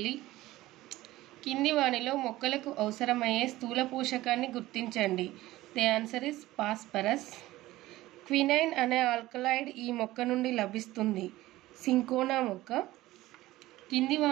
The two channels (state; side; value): quieter; left; 17.0 dB